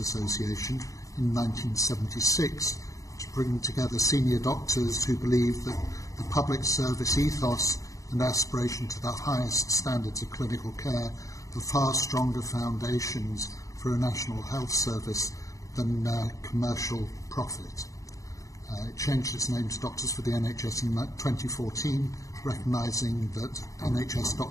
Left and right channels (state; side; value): late; right; 0.16 ms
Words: in 1976 to bring together senior doctors who believe that the public service ethos and aspiration to the highest standards of clinical care are far stronger foundations for a national health service than commercial profit. It changed its name to Doctors for the NHS in 2014, recognising that NHS